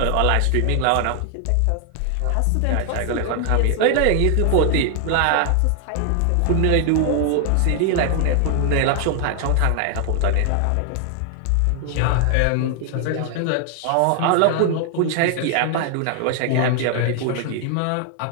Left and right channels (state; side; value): different; both; correlation 0.00